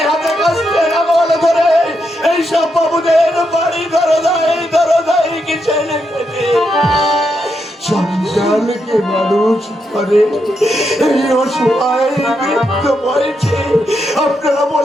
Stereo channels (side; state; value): both; normal; correlation 0.82